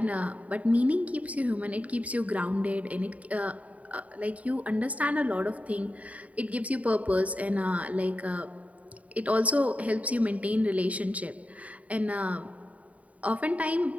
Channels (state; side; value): late; left; 0.069 ms